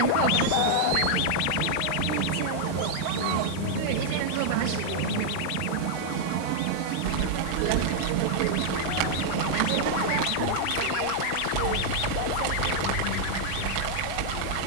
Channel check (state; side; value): different; both; correlation -0.01